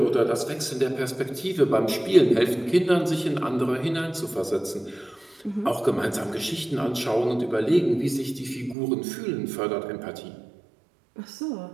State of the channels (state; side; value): drops out; left; at 8.8 s